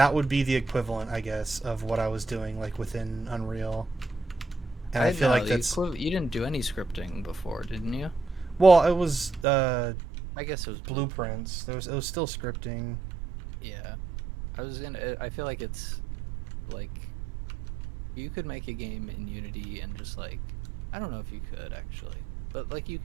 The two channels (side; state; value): left; drops out; at 9.5 s